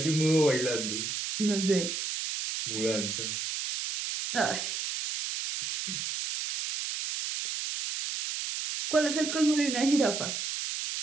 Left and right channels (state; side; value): noise; right; hiss, 4 dB below the sound